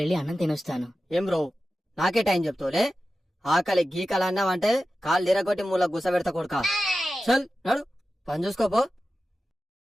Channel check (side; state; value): both; normal; correlation 0.93